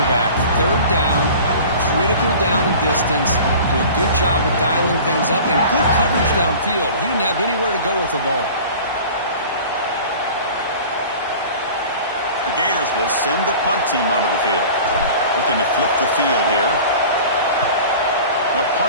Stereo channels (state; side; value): inverted; both; correlation -0.41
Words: third down, critical down and distance, do a good job of dialing things up, and good coverage downfield. He didn't have anywhere to go with the ball. The Gators will send the punt team onto the field. Looking to flip the field here. They'll